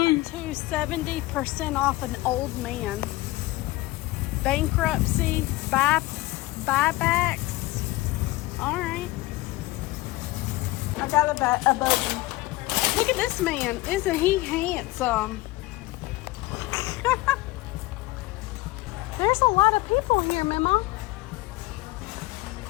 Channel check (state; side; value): quieter; right; 19.4 dB